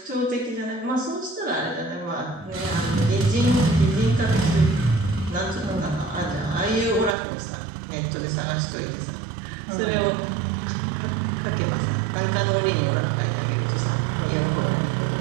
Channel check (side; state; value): left; drops out; at 7.2 s